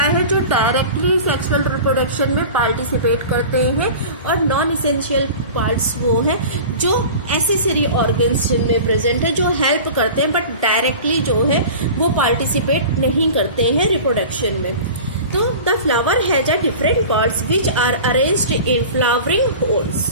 है, जो डायरेक्टली सेक्सुअल रिप्रोडक्शन में पार्टिसिपेट करते हैं, और नॉन इसेंशियल पार्ट्स वो हैं जो एसेसरी ऑर्गन्स जिनमें प्रेजेंट है, जो हेल्प करते हैं बट डायरेक्टली जो है वो पार्टिसिपेट नहीं करते हैं रिप्रोडक्शन में। तो the flower has a different parts which are arranged in flowering whorls.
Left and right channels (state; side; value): inverted; both; correlation -0.37